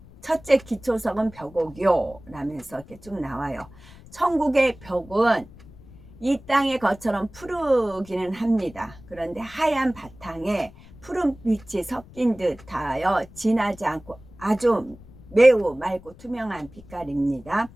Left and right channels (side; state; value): left; noise; rumble, 21 dB below the sound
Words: 첫째 기초석은 벽옥이요 라면서 이렇게 쭉 나와요. 천국의 벽은 이 땅의 것처럼 푸르기는 합니다. 그런데 하얀 바탕에 푸른빛이 섞인 듯하여 진하지 않고 아주 매우 맑고 투명한 빛깔입니다.